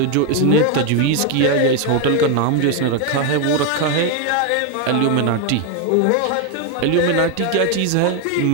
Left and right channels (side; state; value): both; different; correlation 0.01